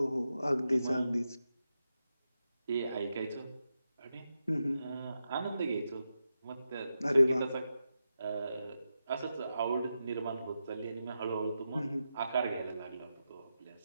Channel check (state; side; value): inverted; both; correlation -0.88